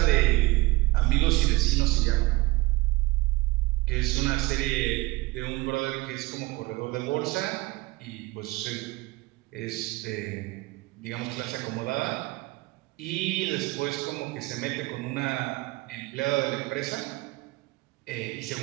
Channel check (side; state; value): left; quieter; 21.9 dB